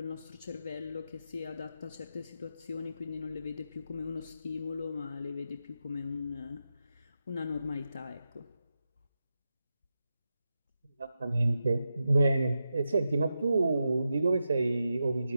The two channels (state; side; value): inverted; both; correlation -0.88